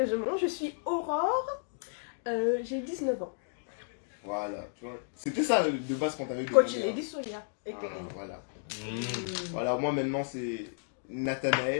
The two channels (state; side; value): silent; right; digital silence